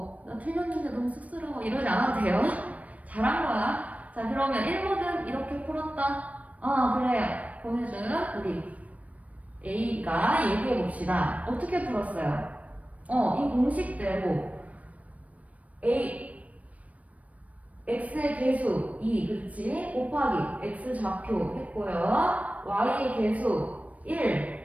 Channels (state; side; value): late; left; 0.068 ms